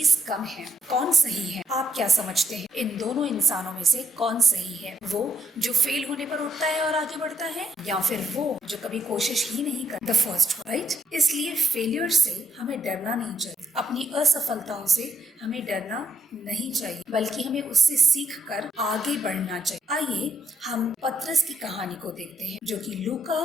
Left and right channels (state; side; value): normal; both; correlation 0.74